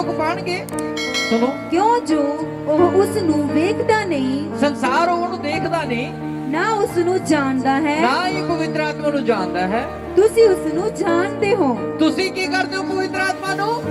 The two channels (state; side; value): identical; both; correlation 1.00